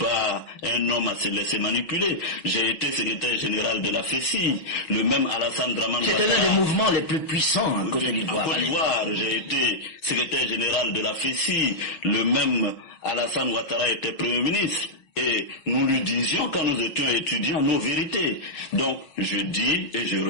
un homme à se laisser manipuler. J'ai été secrétaire général de la FECI, le même Alassane Dramane Ouattara. C'était l'un des mouvements les plus puissants en Côte d'Ivoire. En Côte d'Ivoire, j'ai été secrétaire général de la FECI, le même Alassane Ouattara était Premier ministre. Et nous lui disions quand nous étions étudiants nos vérités. Donc, je dis et je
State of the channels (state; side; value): late; right; 6.3 ms